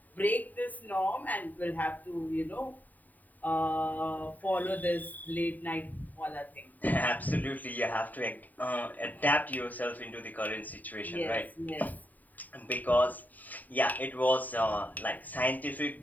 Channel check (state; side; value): late; right; 0.083 ms